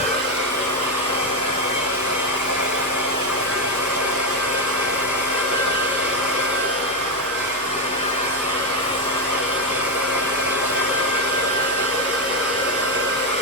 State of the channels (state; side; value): normal; both; correlation 0.07